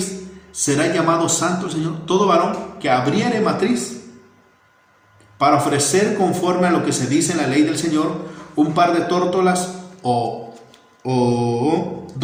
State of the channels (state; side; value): identical; both; correlation 1.00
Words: será llamado santo al Señor. Todo varón que abriere matriz para ofrecer conforme a lo que se dice en la ley del Señor un par de tórtolas o